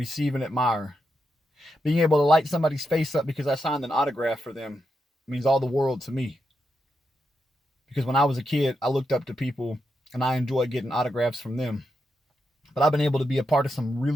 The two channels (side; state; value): both; normal; correlation 0.85